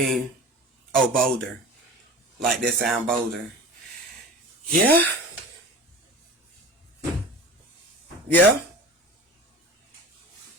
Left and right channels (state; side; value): normal; both; correlation 0.36